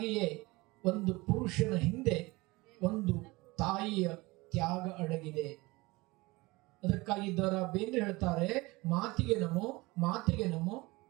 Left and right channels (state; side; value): quieter; left; 22.5 dB